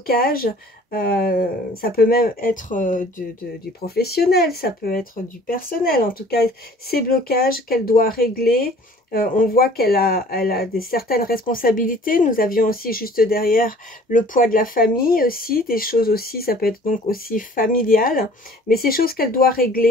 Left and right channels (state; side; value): normal; both; correlation 0.51